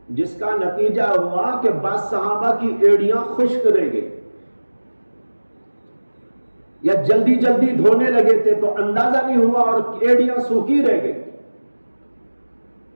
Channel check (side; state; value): both; inverted; correlation -1.00